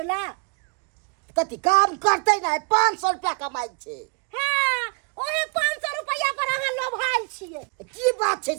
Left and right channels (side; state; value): left; quieter; 35.7 dB